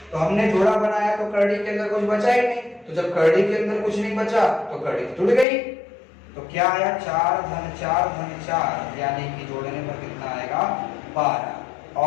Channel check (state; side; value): drops out; right; at 5.5 s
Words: तो हमने जोड़ा बनाया तो करड़ी के अंदर कुछ बचा ही नहीं। तो जब करड़ी के अंदर कुछ नहीं बचा तो करड़ी टूट गई। तो क्या आया? 4 धन 4 धन 4, यानी कि जोड़ने पर कितना आएगा? 12।